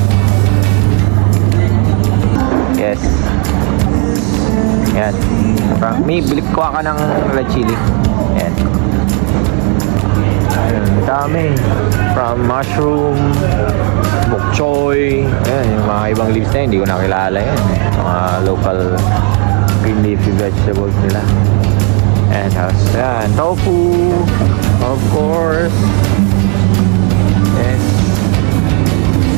Yes. Yan. Me, bilip ko ka ng red chili. Yan. Dami. From mushroom, bok choy. Yan, yung mga ibang leaves na yun, hindi ko nakilala yan. Mga local green leafy vegetables nila. And tapos, yan, tofu. Of course. Yes.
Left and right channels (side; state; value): left; quieter; 32.8 dB